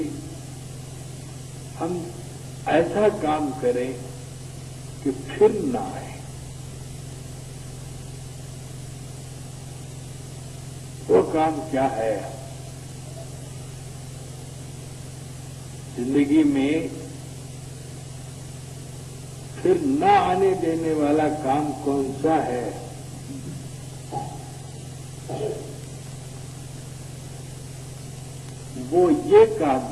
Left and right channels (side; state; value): both; identical; correlation 1.00